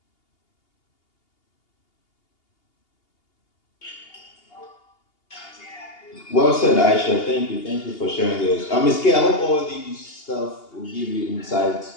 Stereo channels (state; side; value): late; right; 2.8 ms